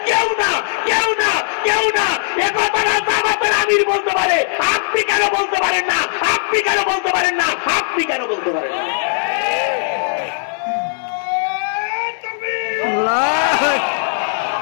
কেউ না, কেউ না, কেউ না। একথাটা জামাতের আমির বলতে পারে, আপনি কেন বলতে পারেন না? আপনি কেন বলতে পারেন না? আপনি কেন বলতে পারেন না?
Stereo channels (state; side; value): silent; right; digital silence